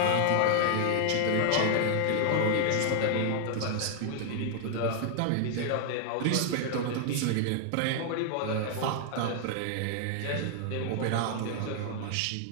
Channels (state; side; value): different; both; correlation 0.00